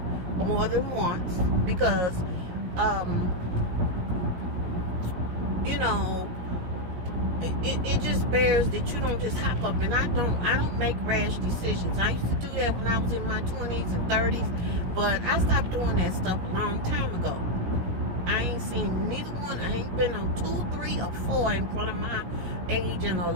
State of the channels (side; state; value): left; late; 17 ms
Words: more than once, because it just bears that you don't just hop up, and I don't make rash decisions. I used to do that when I was in my 20s and 30s, but I stopped doing that stuff a long time ago. I ain't seen neither one. I ain't been on 2, 3, or 4 in front of my age in a